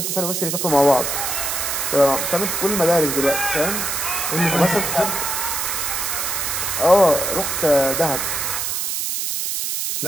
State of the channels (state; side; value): noise; right; hiss, 1 dB below the sound